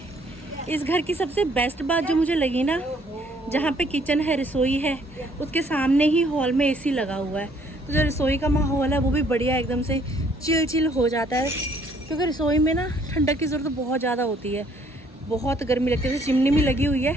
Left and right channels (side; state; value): both; normal; correlation 0.63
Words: इस घर की सबसे बेस्ट बात जो मुझे लगी ना, जहाँ पे किचन है, रसोई है, उसके सामने ही हॉल में एसी लगा हुआ है। तो जो रसोई का माहौल है वो भी बढ़िया एकदम से चिल हो जाता है, क्योंकि रसोई में ना ठंडक की ज़रूरत बहुत ज़्यादा होती है, बहुत गर्मी लगती है। जैसे चिमनी भी लगी हुई है,